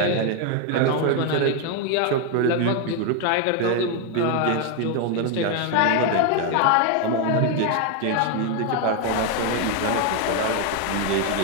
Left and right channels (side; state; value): both; different; correlation 0.01